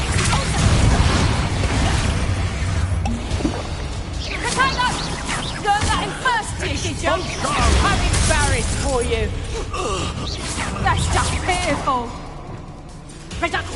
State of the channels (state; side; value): identical; both; correlation 1.00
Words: Potato! Learn that in first year, did you? I'm embarrassed for you. That's just pitiful.